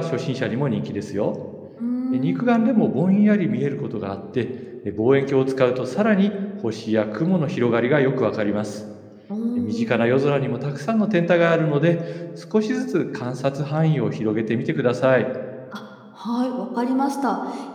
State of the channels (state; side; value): identical; both; correlation 1.00